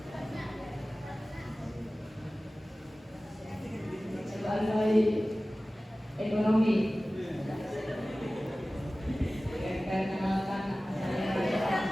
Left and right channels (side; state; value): both; normal; correlation 0.97